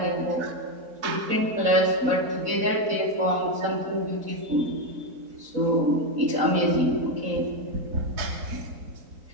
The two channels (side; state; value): left; late; 4.0 ms